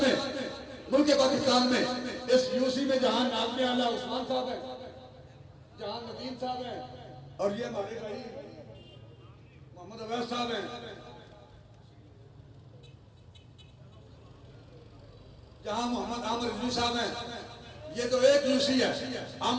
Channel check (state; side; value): identical; both; correlation 1.00